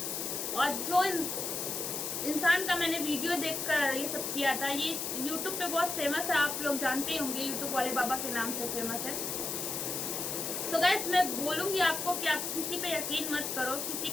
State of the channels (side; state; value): left; noise; hiss, 3 dB below the sound